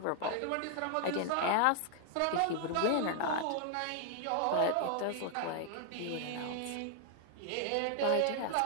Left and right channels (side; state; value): both; different; correlation 0.00